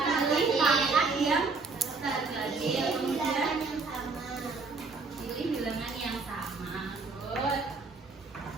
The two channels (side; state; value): left; quieter; 4.1 dB